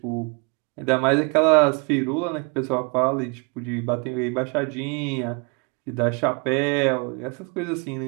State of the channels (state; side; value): quieter; left; 33.4 dB